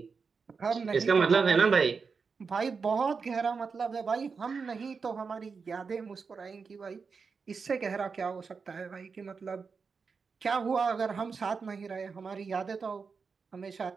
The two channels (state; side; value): quieter; left; 5.2 dB